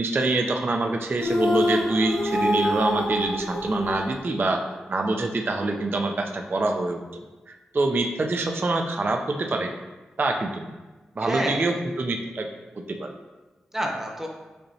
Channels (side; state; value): both; normal; correlation 0.83